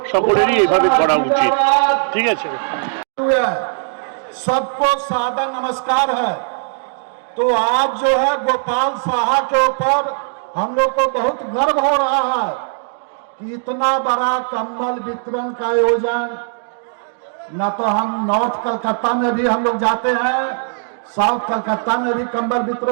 সকলেরই এইভাবে করা উচিত। ঠিক আছে, सबको सादर नमस्कार है। तो आज जो है गोपाल साहा के ऊपर हम लोग को बहुत गर्व हो रहा है कि इतना बड़ा कंबल वितरण का आयोजन, न तो हम नॉर्थ कलकत्ता में भी हम लोग जाते हैं, साउथ कलकत्ता में भी कंबल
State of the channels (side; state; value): left; silent; digital silence